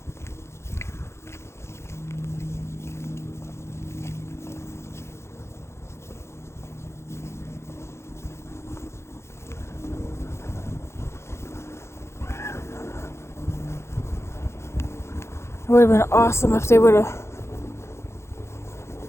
It would have been awesome if they would have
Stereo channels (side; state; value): right; late; 0.13 ms